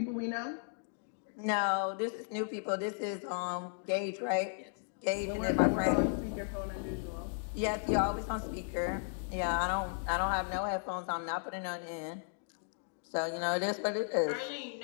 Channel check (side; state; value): right; silent; digital silence